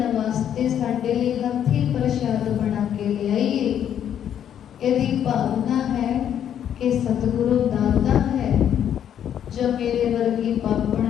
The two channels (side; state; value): right; quieter; 9.6 dB